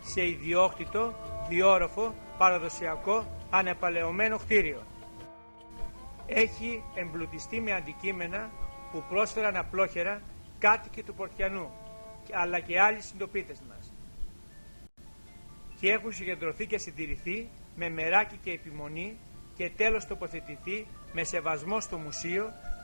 σε ιδιόκτητο, διόροφο, παραδοσιακό, ανεπαλαιωμένο κτίριο. Έχει εμπλουτιστεί με αντικείμενα που πρόσφεραν απλόχερα κάτοικοι του Πορτιανού, αλλά και άλλοι συντοπίτες μας, και έχουν συγκεντρωθεί και συντηρηθεί με μεράκι και επιμονή και τέλος τοποθετηθεί με σεβασμό στο μουσείο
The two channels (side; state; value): both; inverted; correlation -1.00